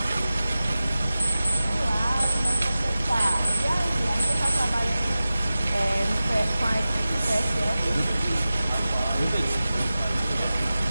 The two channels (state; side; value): inverted; both; correlation -0.96